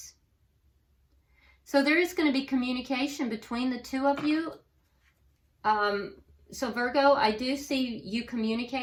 So there is going to be communication between the two of you. So Virgo, I do see you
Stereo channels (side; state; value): both; identical; correlation 1.00